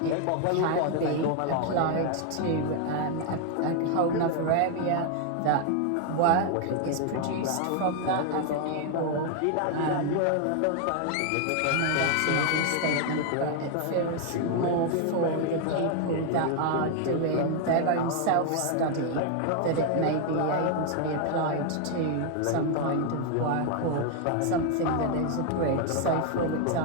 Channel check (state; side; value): different; both; correlation 0.01